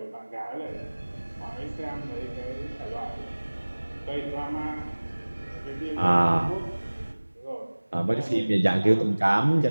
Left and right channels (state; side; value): inverted; both; correlation -1.00